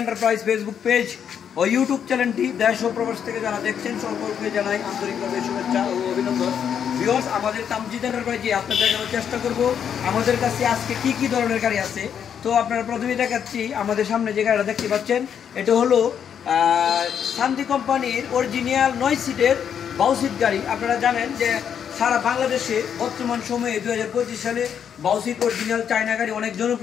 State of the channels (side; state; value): right; quieter; 8.2 dB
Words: enterprise Facebook page ও YouTube চ্যানেলটি দেশ ও প্রবাস থেকে যারা দেখছেন সকলকে জানাই আন্তরিকভাবে শুভেচ্ছা ও অভিনন্দন। ভিউয়ার্স, আমাদের কামজিদ এন্টারপ্রাইজে আপনাদের দেখানোর চেষ্টা করব আমাদের কাছে আজকে কি ধরনের গাড়ি আছে। তো আপনারা প্রথমেই দেখাচ্ছি আমাদের সামনে যে গাড়িটা দেখতে পাচ্ছেন, এটা হলো শান্তি কোম্পানির অরিজিনাল 9 সিটের বাউসিট গাড়ি। আপনারা জানেন যে সারা বাংলাদেশে বর্তমান সময়ে 2025 সালে বাউসিট অরিজিনাল চায়না গাড়ি অনেক